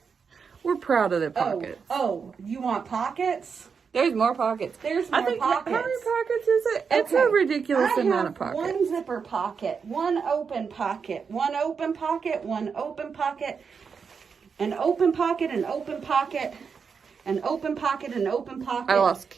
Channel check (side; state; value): left; quieter; 5.9 dB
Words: We're proud of the pockets. Oh, you want pockets? There's more pockets. There's more pockets. How many pockets is it? It's a ridiculous amount of pockets. One zipper pocket, one open pocket, one open pocket, one open pocket, an open pocket, an open pocket, an open pocket, an open pocket. I lost